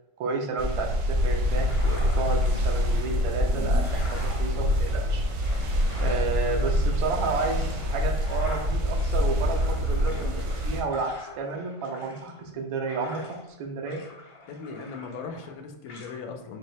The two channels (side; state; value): left; late; 1.5 ms